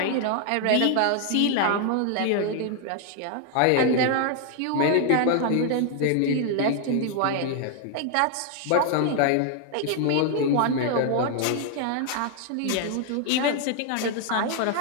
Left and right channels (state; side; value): different; both; correlation 0.00